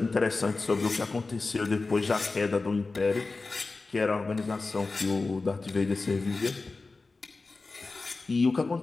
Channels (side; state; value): right; quieter; 3.7 dB